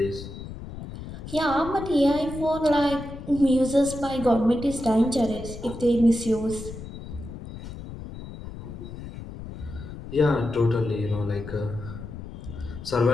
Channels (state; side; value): noise; left; rumble, 11 dB below the sound